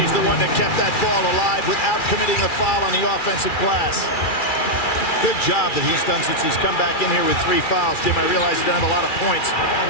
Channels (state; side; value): late; right; 2.4 ms